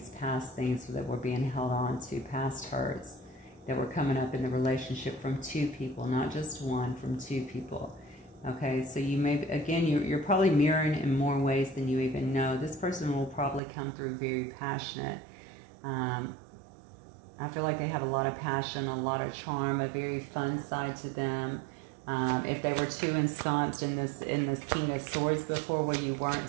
past things that were being held on to, past hurts that were coming up in the relationship from two people, not just one, from two people. Okay, so you may, again, you're probably mirroring in more ways than you even know. This person will probably come through very passionate. I feel like they have a lot of passion, a lot of charm, a very fun side to them. If they were too ensconced in this King of Swords before, where you weren't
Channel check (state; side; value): drops out; left; at 13.6 s